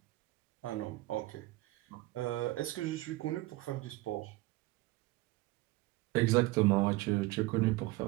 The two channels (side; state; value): left; quieter; 19.6 dB